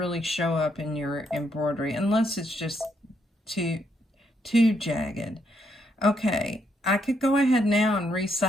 show up in your embroidery unless it's just too jagged. Okay, I could go ahead now and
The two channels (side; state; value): both; normal; correlation 0.75